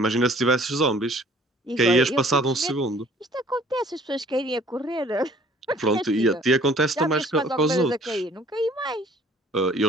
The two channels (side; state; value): both; normal; correlation 0.55